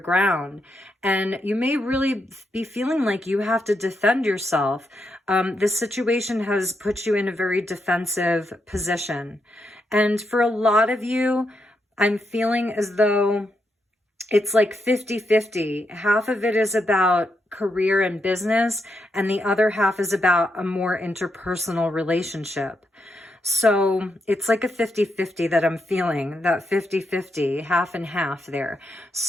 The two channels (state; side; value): normal; both; correlation 0.82